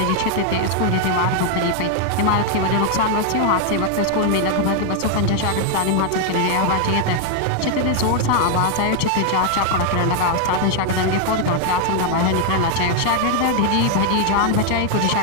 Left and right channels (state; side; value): different; both; correlation 0.00